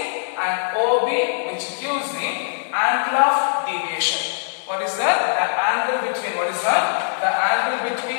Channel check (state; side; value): silent; right; digital silence